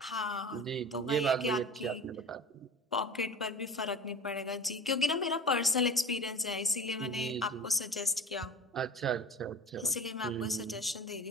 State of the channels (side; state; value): both; normal; correlation 0.34